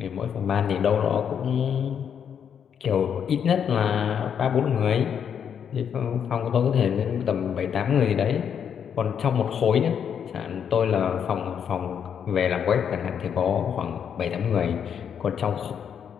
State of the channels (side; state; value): right; quieter; 7.9 dB